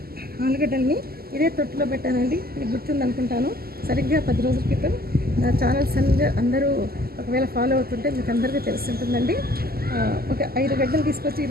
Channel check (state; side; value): late; left; 0.45 ms